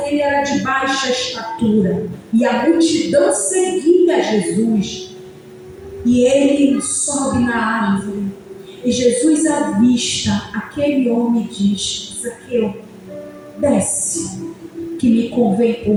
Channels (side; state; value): both; identical; correlation 1.00